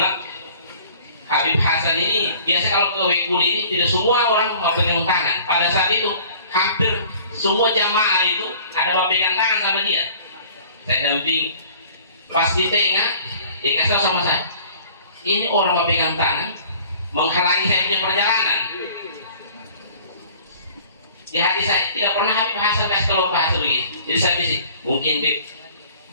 Habib Hasan ini biasa kalau ke Wekuli ini tidak semua orang mau pegang tangan. Pada saat itu hampir semua jamaah itu ada pegang tangan sama dia. Saya damping pas di tengah dia kasih tahu sama saya, ini orang mau pegang tangan menghalangi saya punya perjalanan. Di hati saya tidak pernah Habib Hasan kasih tahu bahasa begitu. Jadi saya pikir mungkin Bib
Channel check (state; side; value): inverted; both; correlation -0.50